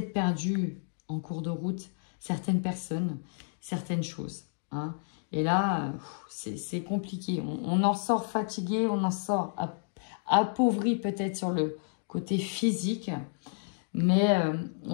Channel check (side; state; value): right; silent; digital silence